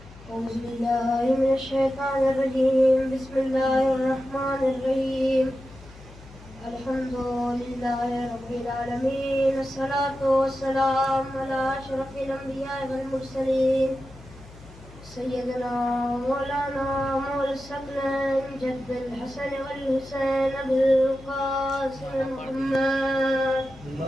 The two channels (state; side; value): noise; left; hum, 19 dB below the sound